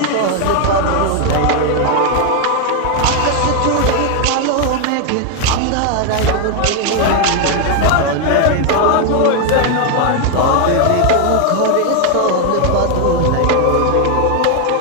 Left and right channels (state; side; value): different; both; correlation 0.01